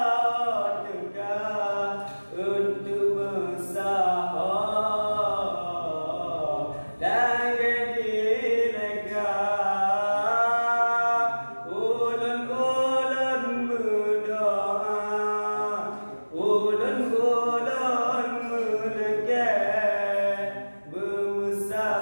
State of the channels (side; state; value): both; inverted; correlation -1.00